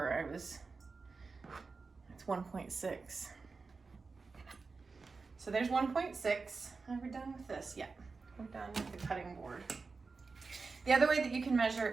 It's 1.6. So there's 1.6. Are we done with this? Yeah, we're done with the cutting board. The other way that you can measure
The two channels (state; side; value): quieter; left; 4.4 dB